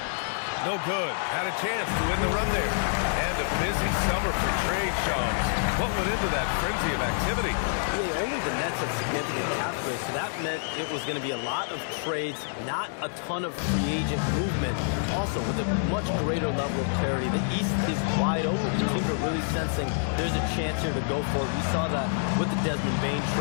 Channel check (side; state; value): right; silent; digital silence